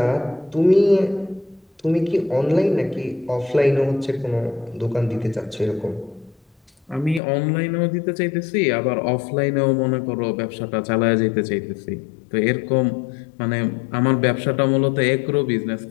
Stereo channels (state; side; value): drops out; right; at 7.2 s